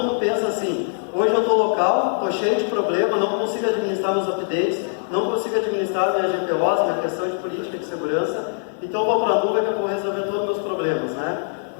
pensa assim, hoje eu estou local, estou cheio de problema, não consigo administrar meus updates, não consigo administrar minha GPOs, minha questão de política de segurança, então eu vou para a nuvem que eu vou resolver todos os meus problemas, né?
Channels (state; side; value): silent; right; digital silence